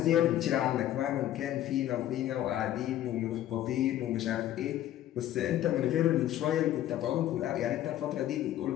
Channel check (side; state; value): right; quieter; 12.7 dB